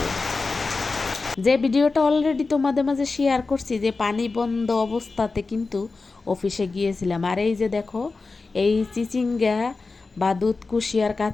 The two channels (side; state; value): right; quieter; 3.9 dB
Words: যে ভিডিওটা অলরেডি তোমাদের মাঝে শেয়ার করছি, যে পানি বন্ধ অবস্থাতে কিন্তু অফিসে গিয়েছিলাম। আর এই যে দেখো, এই চিচিঙ্গা বা দুধ কুশি আর